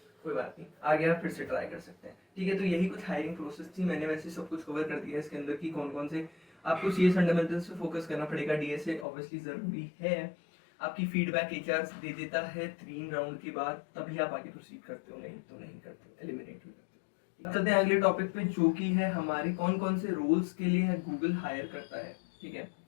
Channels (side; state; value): right; drops out; at 9.1 s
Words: कोई बात नहीं, आगे आप फिर से ट्राई कर सकते हैं। ठीक है, तो यही कुछ हायरिंग प्रोसेस थी। मैंने वैसे सब कुछ कवर कर दिया है इसके अंदर की कौन कौन से आपको सीएस फंडामेंटल्स पे फोकस करना पड़ेगा, डीएसए ऑब्वियसली ज़रूरी है। आपकी फीडबैक एचआर दे देता है 3 राउंड के बाद, तभी आप आगे प्रोसीड करते हो, नहीं तो नहीं करते हो, एलिमिनेट भी करते हो। चलते हैं अगले टॉपिक पे, जो कि है हमारे कौन कौन से रोल्स के लिए गूगल हायर करता है। ठीक है,